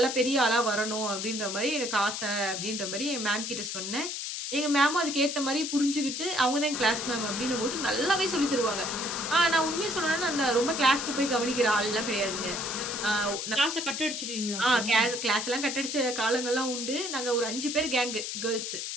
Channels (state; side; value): noise; left; hiss, 4 dB below the sound